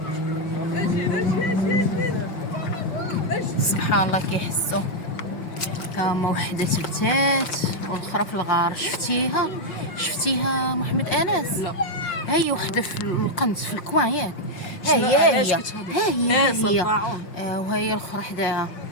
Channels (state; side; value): late; right; 5.6 ms